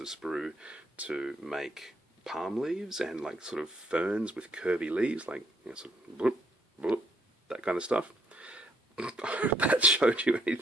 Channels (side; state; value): both; normal; correlation 0.69